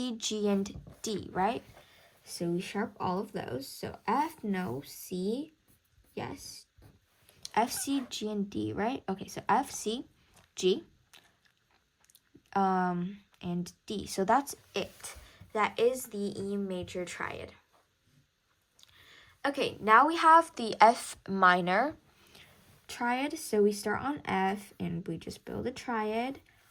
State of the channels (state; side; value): identical; both; correlation 1.00